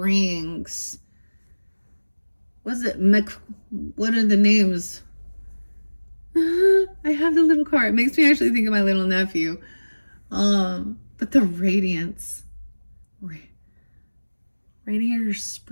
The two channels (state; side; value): inverted; both; correlation -1.00